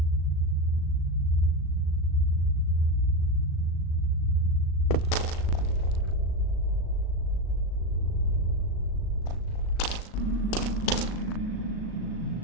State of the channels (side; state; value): right; late; 37 ms